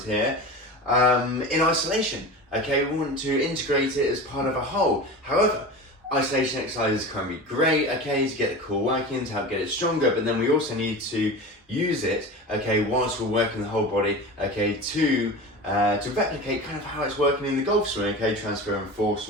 here, in isolation, okay. We want to integrate it as part of a whole. However, isolation exercises can be great, okay, to get the core working, to help get it stronger, but then we also need to use it, okay, whilst we're working the whole body, okay, to replicate kind of how it's working in the golf swing, okay, transferring force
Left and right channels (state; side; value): normal; both; correlation 0.30